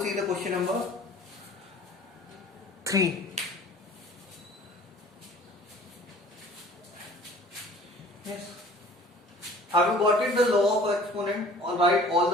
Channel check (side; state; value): both; normal; correlation 0.49